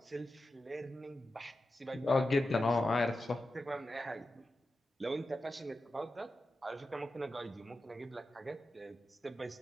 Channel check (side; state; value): both; normal; correlation 0.91